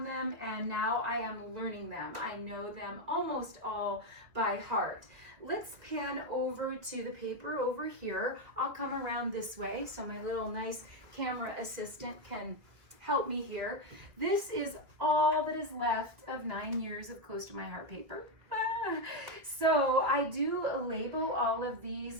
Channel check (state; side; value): late; left; 2.2 ms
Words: them, and now I am learning them. I know them almost all by heart. Let's pan over to the paper over here. I'll come around this way so my little nice camera assistant can help me here. This is all that is left of 9 years of Close to My Heart paper. So I do label all of